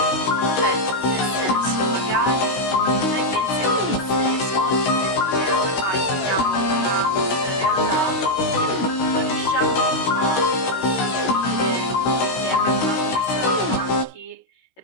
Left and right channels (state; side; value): late; right; 16 ms